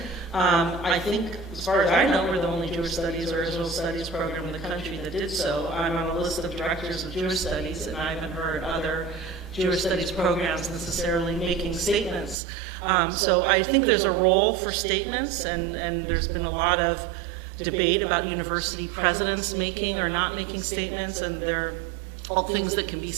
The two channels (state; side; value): drops out; left; at 12.4 s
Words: I think, as far as I know, we're the only Jewish Studies or Israel Studies program in the country that did so. I'm on a list of directors of Jewish Studies, and I haven't heard other Jewish Studies programs necessarily making statements. So I think there's a role for statements, and there's been a lot of debate about university presidents making or not making statements, and there are all things that can be